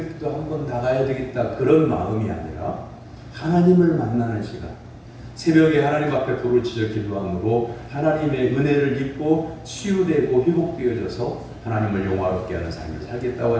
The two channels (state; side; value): identical; both; correlation 1.00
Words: 한번 나가야 되겠다 그런 마음이 아니라 하나님을 만나는 시간, 새벽에 하나님 앞에 불을 지져 기도함으로 하나님의 은혜를 입고 치유되고 회복되어져서 하나님을 영화롭게 하는 삶을 살겠다고